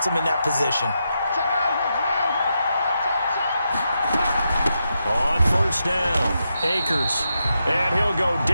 them in that position. On 1st first down. Akers. And he'll go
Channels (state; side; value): inverted; both; correlation -0.85